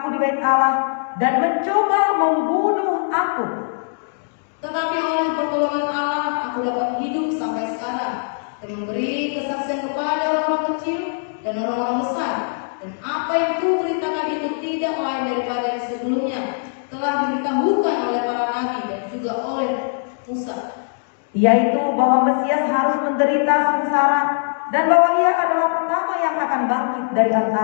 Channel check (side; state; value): right; silent; digital silence